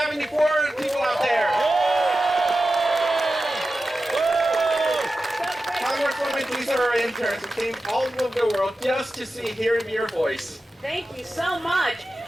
any Florida people out there? Congresswoman, these are our interns who came all over the world just to hear your voice. Thank you so much.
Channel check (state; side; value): normal; both; correlation 0.93